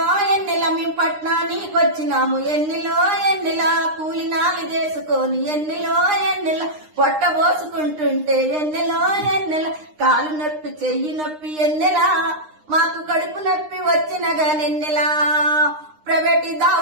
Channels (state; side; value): late; left; 9.8 ms